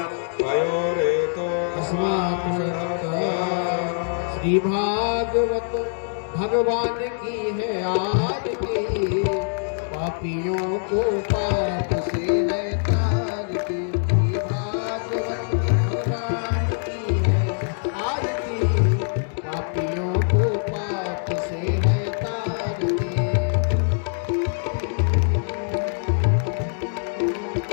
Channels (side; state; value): right; silent; digital silence